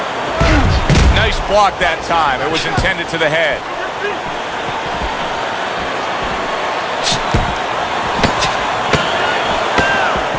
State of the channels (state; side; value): identical; both; correlation 1.00